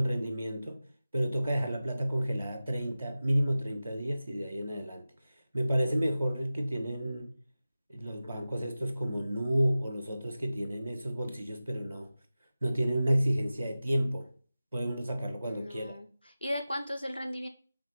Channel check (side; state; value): both; inverted; correlation -0.95